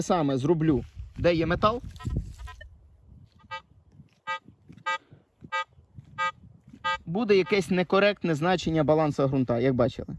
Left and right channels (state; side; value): identical; both; correlation 1.00